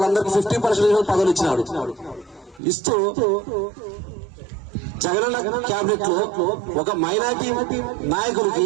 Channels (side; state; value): left; drops out; at 2.6 s